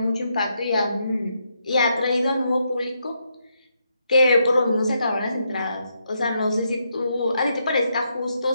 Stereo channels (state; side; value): inverted; both; correlation -0.79